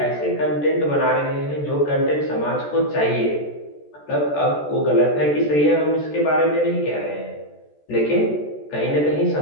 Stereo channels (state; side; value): late; right; 14 ms